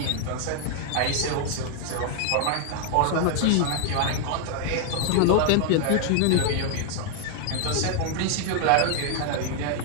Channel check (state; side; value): different; both; correlation 0.00